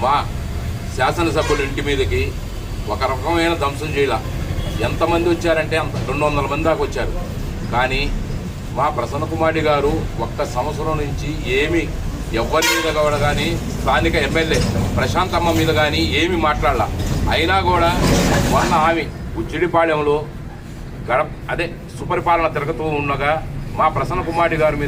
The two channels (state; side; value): identical; both; correlation 1.00